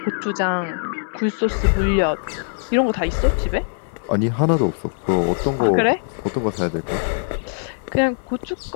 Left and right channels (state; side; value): silent; right; 65 dB below the other